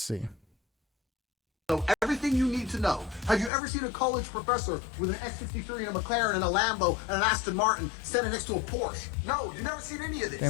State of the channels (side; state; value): right; drops out; at 3.5 s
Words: Know everything you need to know. Have you ever seen a college professor with an X63 and a McLaren and a Lambo and an Aston Martin standing next to a Porsche? No, you've never seen any of this. Damn,